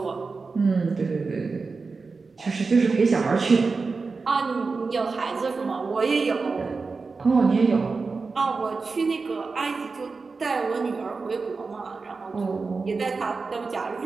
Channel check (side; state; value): left; quieter; 4.3 dB